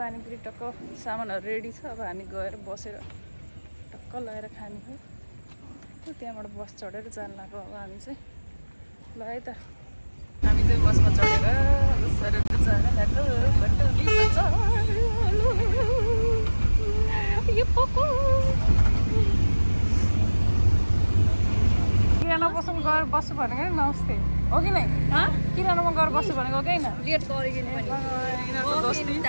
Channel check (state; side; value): inverted; both; correlation -1.00